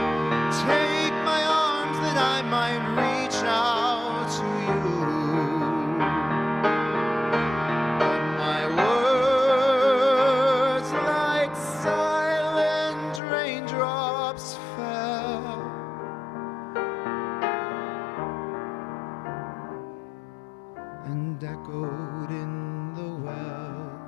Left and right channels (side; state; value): right; drops out; at 13.2 s